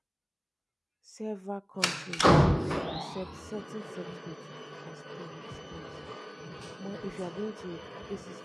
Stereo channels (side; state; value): both; identical; correlation 1.00